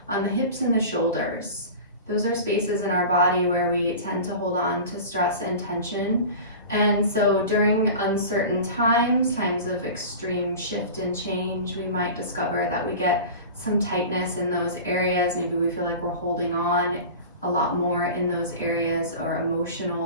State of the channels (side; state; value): both; inverted; correlation -0.35